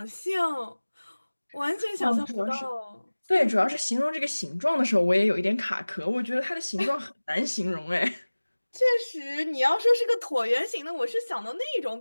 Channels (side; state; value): both; inverted; correlation -1.00